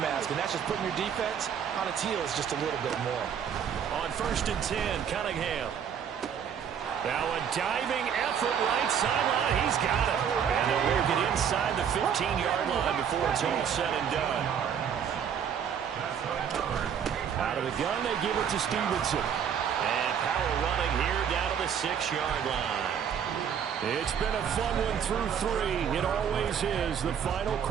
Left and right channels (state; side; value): quieter; left; 8.0 dB